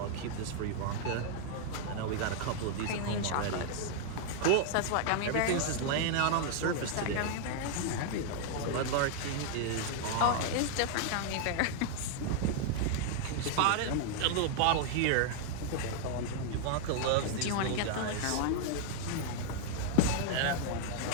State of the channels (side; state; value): both; different; correlation 0.00